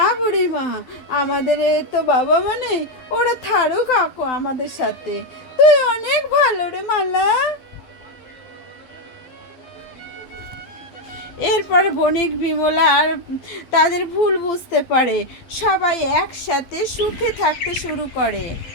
বুড়িমা, আমাদের তো বাবা মা নেই, ওরা থারুক কাকু আমাদের সাথে। তুই অনেক ভালো রে মালা। এরপর বণিক বিমলা আর তাদের ভুল বুঝতে পারে, সবাই একসাথে সুখে থাকতে শুরু করে।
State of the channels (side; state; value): right; late; 12 ms